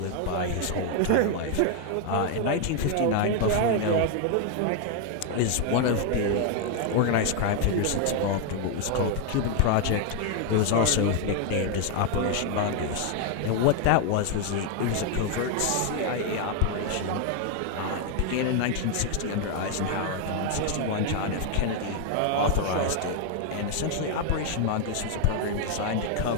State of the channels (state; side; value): different; both; correlation 0.01